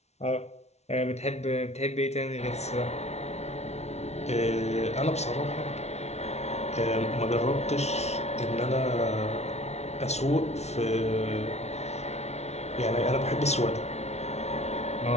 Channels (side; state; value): right; late; 0.31 ms